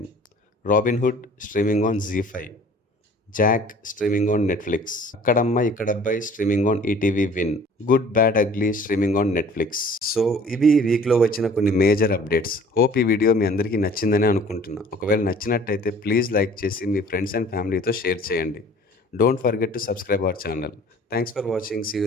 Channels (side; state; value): both; normal; correlation 0.50